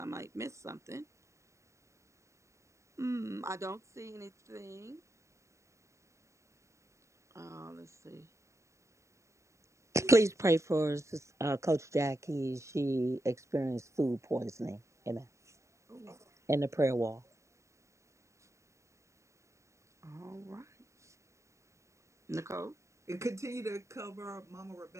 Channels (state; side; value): late; left; 0.14 ms